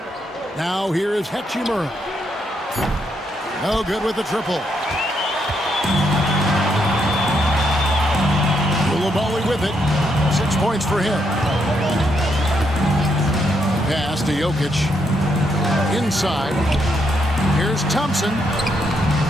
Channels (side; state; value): both; normal; correlation 0.77